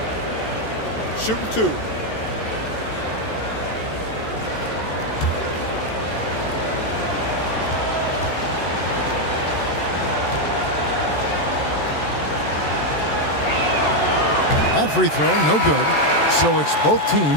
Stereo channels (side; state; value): right; late; 14 ms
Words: Shooting 2. That free throw, no good. So it's both